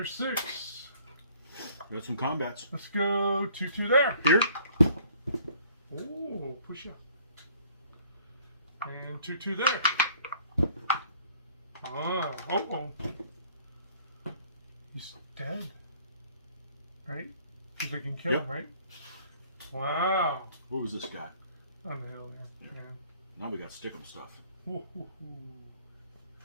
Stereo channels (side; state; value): both; inverted; correlation -0.58